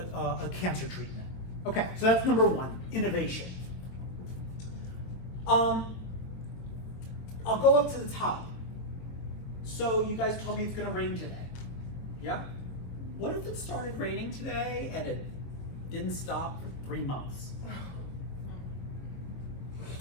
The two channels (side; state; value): right; late; 23 ms